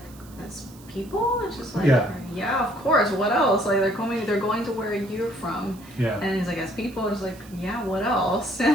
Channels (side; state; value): right; noise; hiss, 23 dB below the sound